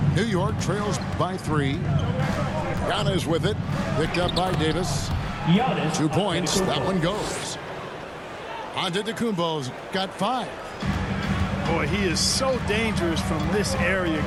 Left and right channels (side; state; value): both; identical; correlation 1.00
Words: New York trails by 3. Giannis with it. Picked up by Davis. 2 points. That one goes. Antetokounmpo's got 5. Boy, he is so dangerous from this area,